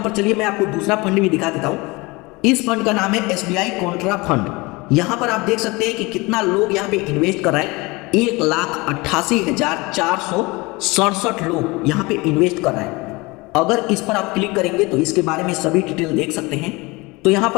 चलिए मैं आपको दूसरा फंड भी दिखा देता हूँ। इस फंड का नाम है SBI कॉन्ट्रा फंड। यहाँ पर आप देख सकते हैं कि कितना लोग यहाँ पे इन्वेस्ट कर रहे हैं। 1,88,467 लोग यहाँ पे इन्वेस्ट कर रहे हैं। अगर इस पर आप क्लिक करेंगे तो इसके बारे में सभी डिटेल देख सकते हैं। तो यहाँ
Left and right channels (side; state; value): right; quieter; 24.2 dB